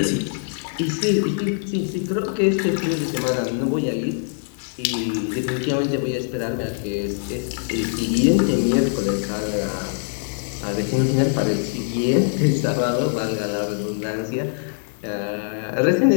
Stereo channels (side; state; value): right; silent; digital silence